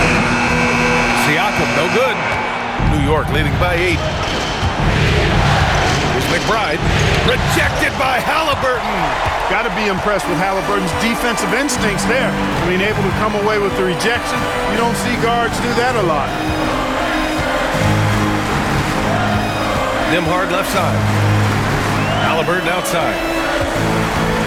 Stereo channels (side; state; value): both; identical; correlation 1.00